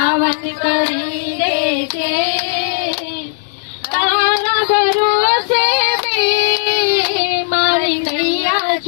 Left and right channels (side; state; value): right; silent; digital silence